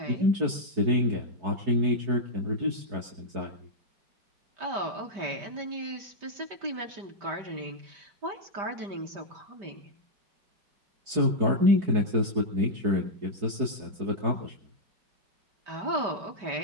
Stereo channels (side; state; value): left; late; 5.1 ms